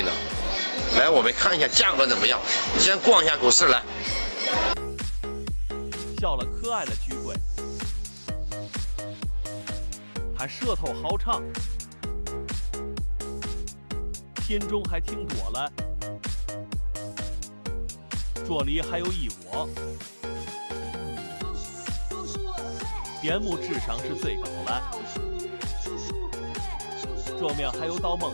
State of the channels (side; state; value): both; inverted; correlation -1.00